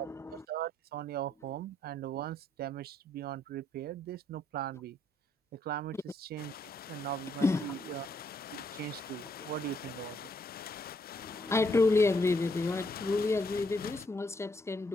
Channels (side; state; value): both; normal; correlation 0.72